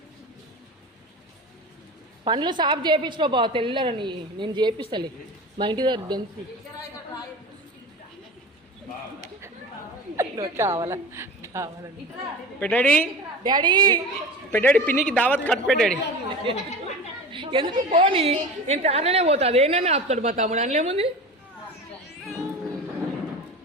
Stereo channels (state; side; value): normal; both; correlation 0.32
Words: పండ్లు సాఫ్ చేయించుకో బావ, తెల్లరని నేను చేపిస్తలే. మా ఇంటి దగ్గర దెంచి కావాలా కావాలని పెట్టాడి డాడీ పెట్టాడి పిన్నికి దావత్ కట్ పెట్టాడి. ఎందుకు పోనీ నేను తానే పోతా, అదేనని ఆపుతాడు మా తమ్ముడు. అనలేముంది